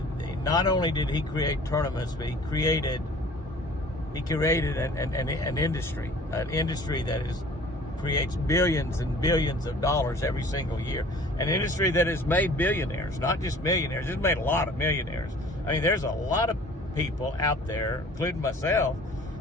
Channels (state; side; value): normal; both; correlation 0.48